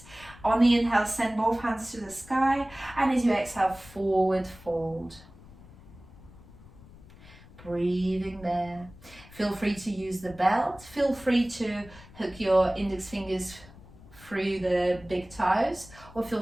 On the inhale, send both hands to the sky. And as you exhale, forward fold. Breathing there. Feel free to use the belt. Feel free to hook your index fingers through the big toes, or feel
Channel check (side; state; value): left; noise; rumble, 21 dB below the sound